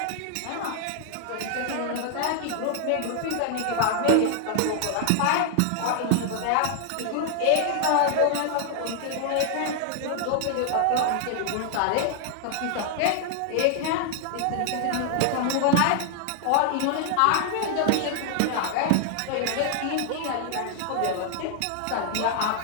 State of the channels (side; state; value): both; different; correlation 0.00